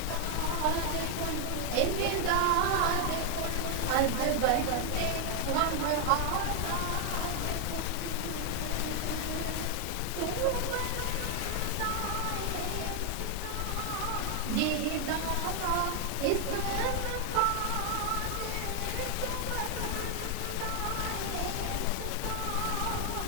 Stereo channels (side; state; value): both; different; correlation 0.00